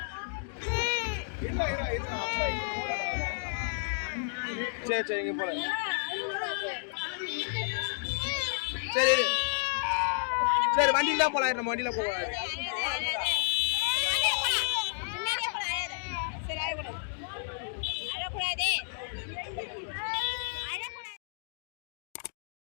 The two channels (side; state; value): right; silent; digital silence